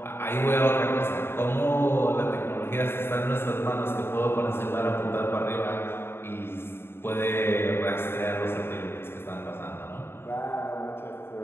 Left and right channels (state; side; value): late; right; 0.11 ms